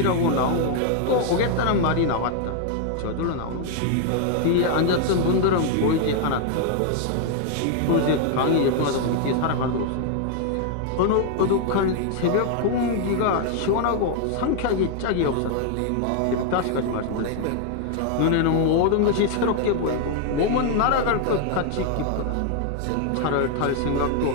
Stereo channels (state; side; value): different; both; correlation 0.00